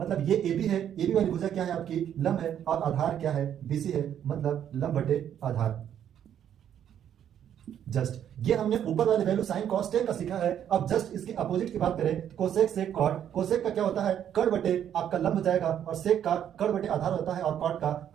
ये ए बी है, ए बी वाली भुजा क्या है आपकी? लंब है, और आधार क्या है? बीसी है, मतलब लंब बटे आधार। जस्ट ये हमने ऊपर वाले वैल्यू साइन कॉस टेन का सीखा है। अब जस्ट इसके अपोजिट की बात करें तो कोसेक सेक कॉट। कोसेक का क्या होता है? कर्ण बटे आपका लंब हो जाएगा, और सेक का कर्ण बटे आधार होता है, और कॉट का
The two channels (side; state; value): left; quieter; 9.8 dB